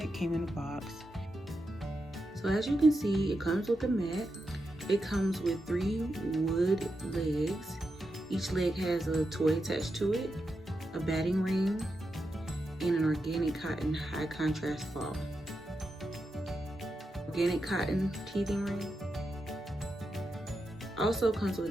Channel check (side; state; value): both; normal; correlation 0.87